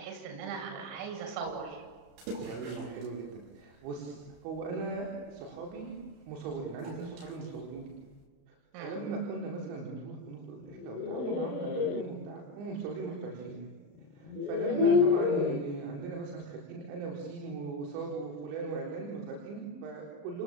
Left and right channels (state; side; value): late; left; 35 ms